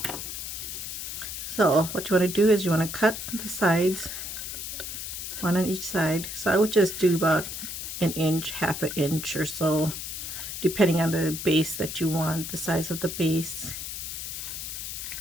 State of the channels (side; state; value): left; noise; hiss, 6 dB below the sound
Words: So what you want to do is you want to cut the sides, one on each side. So I would just do about an inch, half an inch or so, depending on the base that you want, the size of the base.